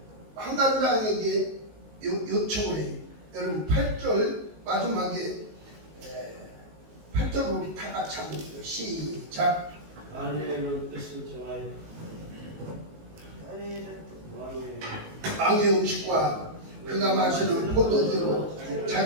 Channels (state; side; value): late; left; 19 ms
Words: 한간장에게 요청을 해요. 여러분 8절 마지막에 8절 우리 다 같이 한번 읽어요. 시작. 아내의 뜻을 정하여 왕의 음식과 그가 마시는 포도주로